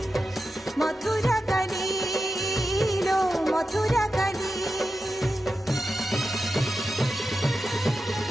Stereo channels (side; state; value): both; normal; correlation 0.91